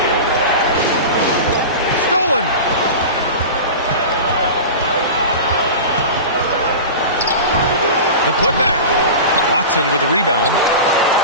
Stolen. The putback. Watson with the rebound.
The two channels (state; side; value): inverted; both; correlation -0.30